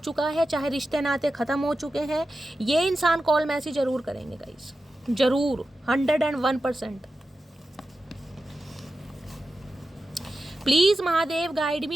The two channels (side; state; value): both; normal; correlation 0.92